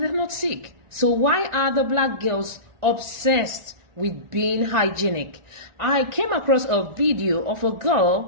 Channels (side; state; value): left; late; 1.4 ms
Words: they're not sick. So why are the black girls obsessed with being hygienic. I came across a video of a